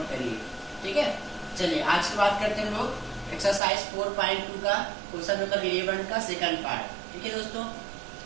करिए। ठीक है, चलिए आज की बात करते हैं लोग एक्सरसाइज 4.2 का क्वेश्चन नंबर 11 का सेकंड पार्ट। ठीक है दोस्तों,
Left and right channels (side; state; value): left; drops out; at 3.6 s